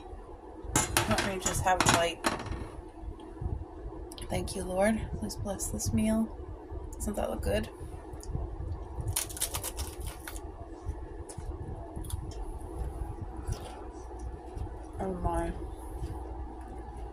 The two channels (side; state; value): both; identical; correlation 1.00